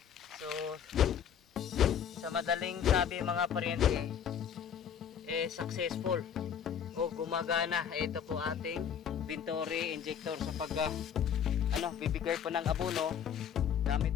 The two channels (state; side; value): quieter; right; 8.2 dB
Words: So sa madaling sabi mga paryente, successful gumagana ito po ating Venturi injector sa bibigay po ng abono